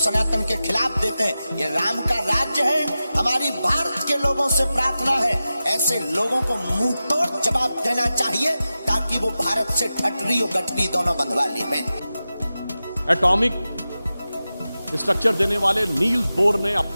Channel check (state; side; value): inverted; both; correlation -0.94